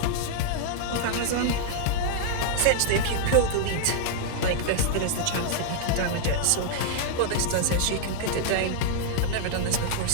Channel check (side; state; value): both; different; correlation -0.01